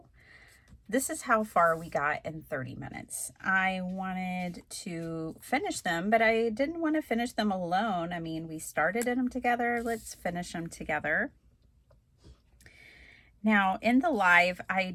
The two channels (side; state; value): both; identical; correlation 1.00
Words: this is how far we got in 30 minutes. I wanted to finish them, but I didn't want to finish them alone. I mean, we started them together. Let's finish them together. Now, in the live,